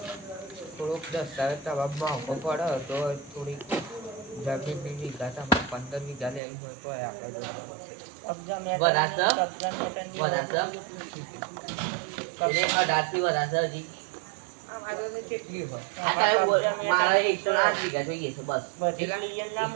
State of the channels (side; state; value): left; drops out; at 6.4 s